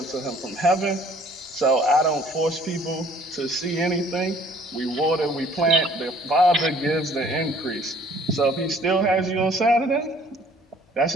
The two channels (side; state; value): both; normal; correlation 0.56